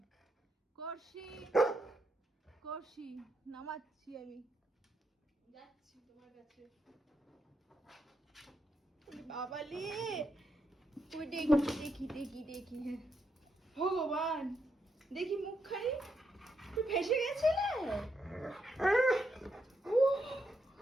করছি করছি, নামাচ্ছি আমি, যাচ্ছি তোমার কাছে। বাবালে, ওই দেখি দেখি দেখি দেখি, হ্যাঁ ভগবান, দেখি মুখখানি তুই ভেসে গেছিলে।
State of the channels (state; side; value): normal; both; correlation 0.81